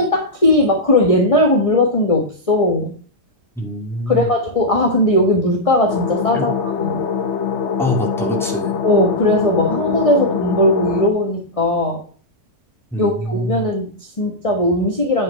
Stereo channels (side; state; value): both; normal; correlation -0.07